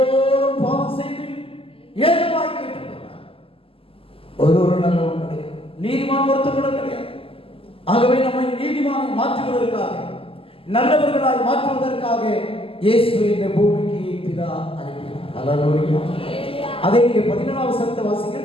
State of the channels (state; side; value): late; right; 0.26 ms